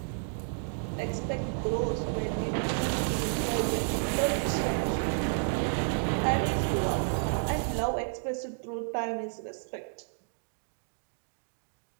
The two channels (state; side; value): silent; left; digital silence